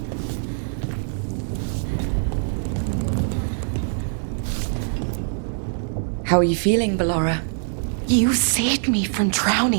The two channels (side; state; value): left; silent; digital silence